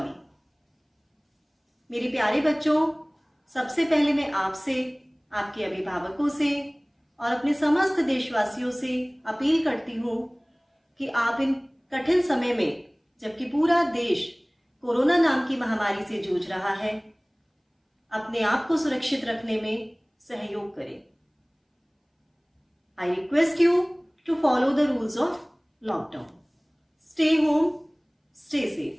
मेरे प्यारे बच्चों, सबसे पहले मैं आपसे, आपके अभिभावकों से और अपने समस्त देशवासियों से अपील करती हूँ कि आप इन कठिन समय में, जबकि पूरा देश कोरोना नाम की महामारी से जूझ रहा है, अपने आप को सुरक्षित रखने में सहयोग करें। I request you to follow the rules of lockdown. Stay home, stay safe.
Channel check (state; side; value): identical; both; correlation 1.00